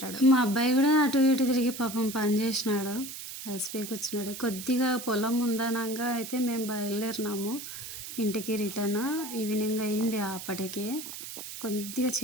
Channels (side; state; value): right; noise; hiss, 10 dB below the sound